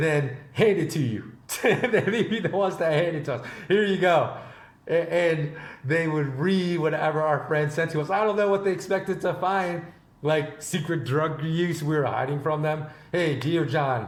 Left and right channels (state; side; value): identical; both; correlation 1.00